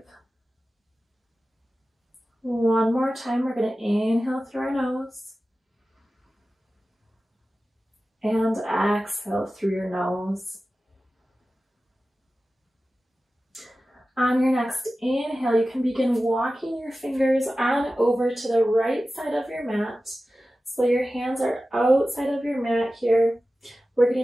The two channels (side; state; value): both; normal; correlation 0.95